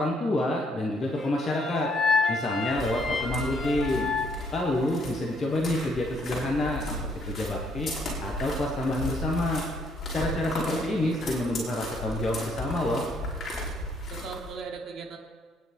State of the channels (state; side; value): normal; both; correlation 0.68